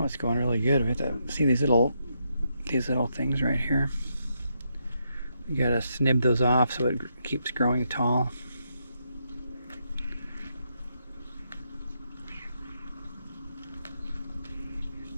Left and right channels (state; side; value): inverted; both; correlation -0.79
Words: going really good. We have to see these little things right here. You gotta snip those off so it keeps growing tall.